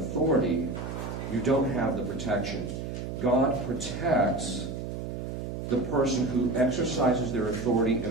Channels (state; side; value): noise; right; hum, 6 dB below the sound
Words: you don't have the protection. God protects the person who exercises their authority in